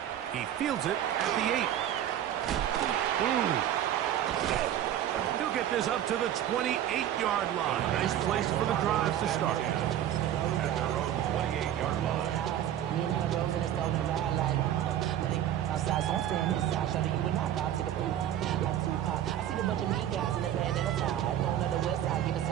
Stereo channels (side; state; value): left; quieter; 11.2 dB